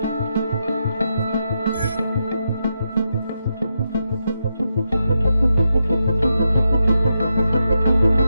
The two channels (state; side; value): inverted; both; correlation -0.85